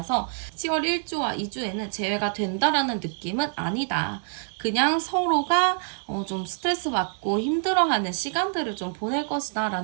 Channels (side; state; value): left; silent; 61 dB below the other